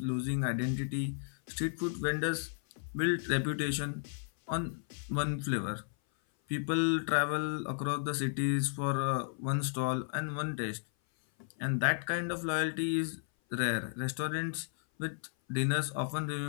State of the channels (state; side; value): silent; right; 55 dB below the other